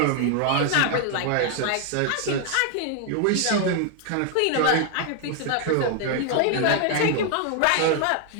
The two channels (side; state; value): both; different; correlation 0.00